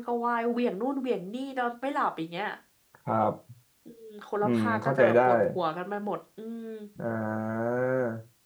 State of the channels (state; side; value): identical; both; correlation 1.00